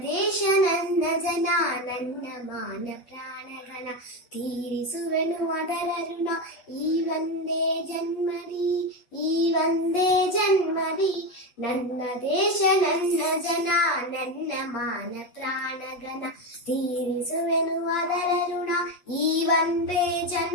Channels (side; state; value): right; late; 8.4 ms